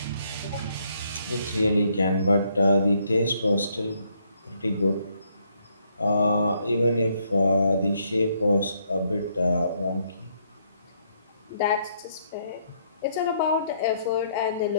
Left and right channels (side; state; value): both; inverted; correlation -0.71